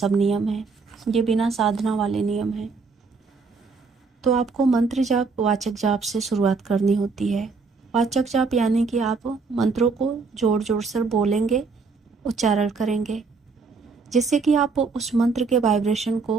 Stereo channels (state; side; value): quieter; left; 4.6 dB